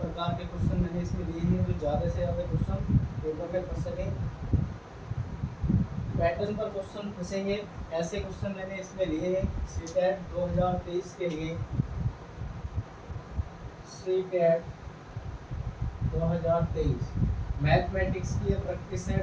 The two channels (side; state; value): both; identical; correlation 1.00